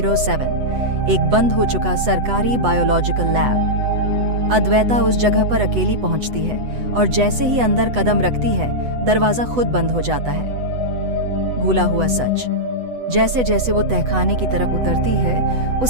एक बंद हो चुका सरकारी बायोलॉजिकल लैब। अद्वैता उस जगह पर अकेली पहुंचती है और जैसे ही अंदर कदम रखती है, दरवाजा खुद बंद हो जाता है। भूला हुआ सच। जैसे जैसे वो तहखाने की तरफ उतरती है,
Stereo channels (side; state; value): left; late; 8.0 ms